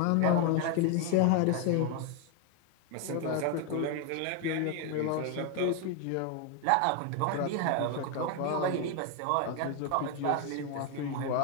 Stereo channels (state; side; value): different; both; correlation 0.01